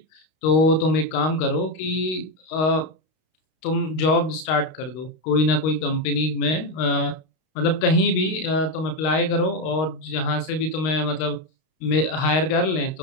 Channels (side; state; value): right; late; 32 ms